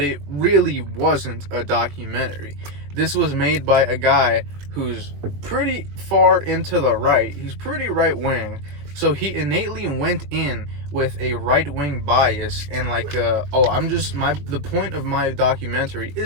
it really wasn't a documentary. This was made by a guy who's pretty far into the right. He's pretty right-wing. So he innately went in with a right-wing bias and like, the point of my documentary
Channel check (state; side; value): late; left; 21 ms